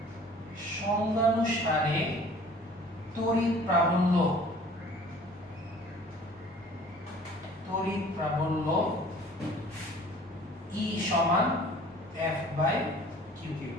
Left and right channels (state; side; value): normal; both; correlation 0.49